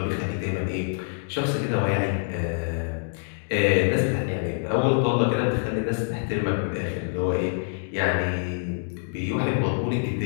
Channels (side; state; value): right; silent; digital silence